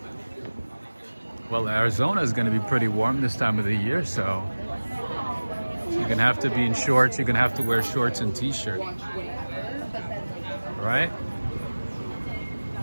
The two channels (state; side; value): inverted; both; correlation -1.00